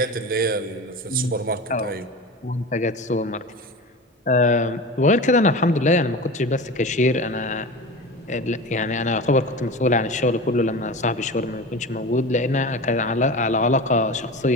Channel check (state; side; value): normal; both; correlation 0.30